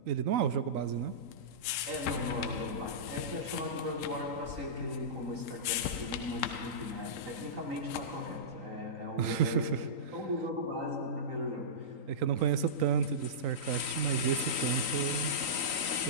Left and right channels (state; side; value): late; left; 3.9 ms